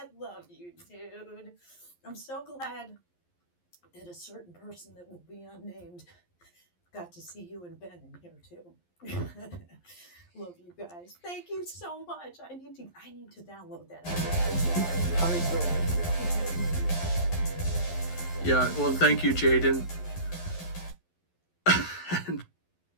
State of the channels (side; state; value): right; late; 11 ms